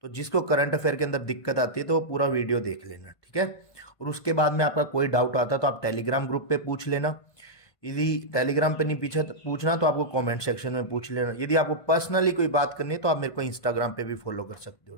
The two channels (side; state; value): right; late; 1.5 ms